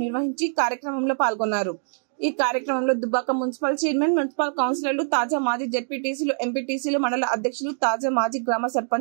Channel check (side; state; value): left; silent; digital silence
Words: నిర్వహించి కార్యక్రమంలో పాల్గొన్నారు. ఈ కార్యక్రమంలో దుబ్బాక మున్సిపల్ చైర్మన్, మున్సిపల్ కౌన్సిలర్లు, తాజా మాజీ జెడ్పీటీసీలు, ఎంపీటీసీలు, మండల అధ్యక్షులు, తాజా మాజీ గ్రామ